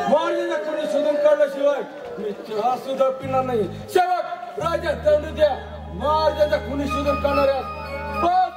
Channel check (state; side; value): identical; both; correlation 1.00